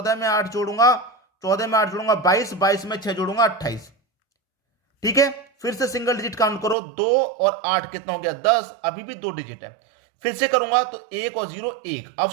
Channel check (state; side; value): drops out; left; at 6.8 s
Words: में 8 जोड़ूंगा। 14 में 8 जोड़ूंगा 22। 22 में 6 जोड़ूंगा 28। ठीक है। फिर से सिंगल डिजिट काउंट करो। 2 और 8 कितना हो गया? 10। अभी भी 2 डिजिट है। फिर से करूंगा तो 1 और 0 1। अब